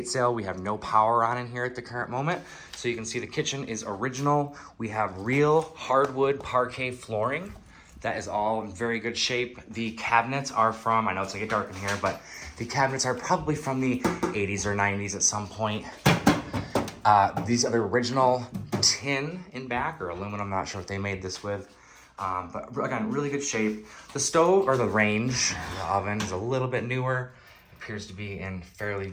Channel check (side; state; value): both; identical; correlation 1.00